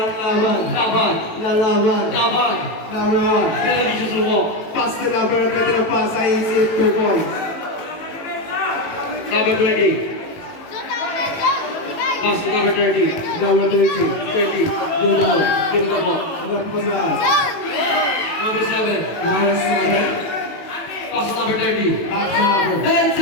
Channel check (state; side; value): late; right; 18 ms